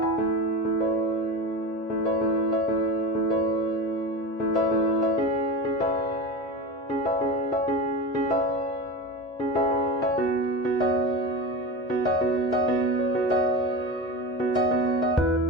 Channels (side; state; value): both; normal; correlation 0.25